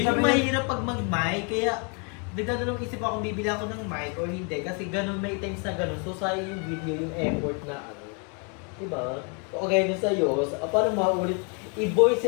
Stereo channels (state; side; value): quieter; right; 36.4 dB